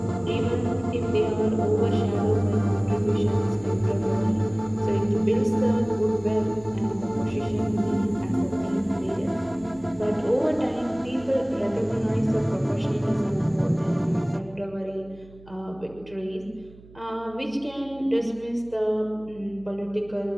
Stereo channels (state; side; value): noise; right; hum, 22 dB below the sound